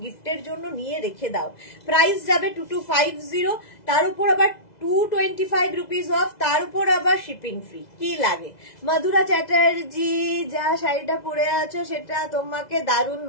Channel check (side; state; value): right; late; 2.0 ms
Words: গিফটের জন্য নিয়ে রেখে দাও। প্রাইস যাবে 2250, তার উপর আবার 225 রুপিস অফ, তার উপর আবার শিপিং ফ্রি। কি লাগে? মধুরা চ্যাটার্জি, যা শাড়িটা পরে আছো সেটা তোমাকে দারুণ